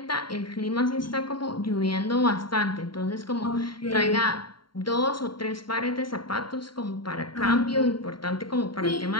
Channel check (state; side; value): late; right; 0.72 ms